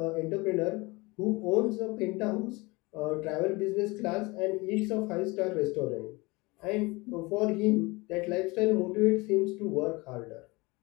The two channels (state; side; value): quieter; right; 24.3 dB